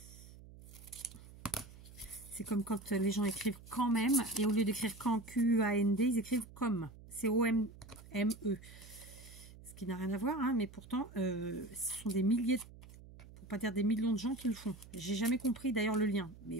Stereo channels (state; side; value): noise; right; hum, 18 dB below the sound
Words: C'est comme quand les gens écrivent quand même, et au lieu d'écrire quand, Q-A-N-D, ils écrivent comme, C-O-M-M-E. Ce qui n'a rien à voir, hein, mais pourtant, ce sont des milliers, pour pas dire des millions de gens qui le font. J'ai jamais compris d'ailleurs le lien,